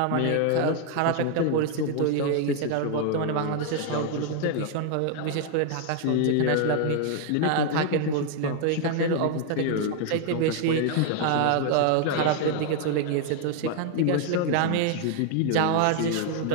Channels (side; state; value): both; different; correlation 0.00